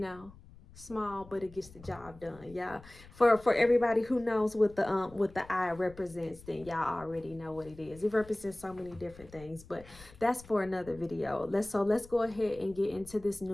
small, but it gets the job done. Yeah, for everybody who knows what the eye represents, then y'all already know what it is. It represents so many different things, but that's for another video. Let's go ahead and get into this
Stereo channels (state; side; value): noise; left; rumble, 21 dB below the sound